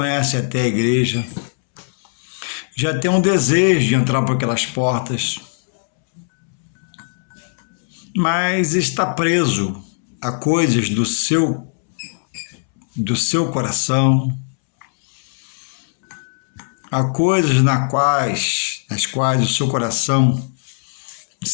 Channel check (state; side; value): silent; right; 66 dB below the other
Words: até a igreja, já tem um desejo de entrar por aquelas portas, mas está preso a coisas do seu coração, a coisas nas quais o seu coração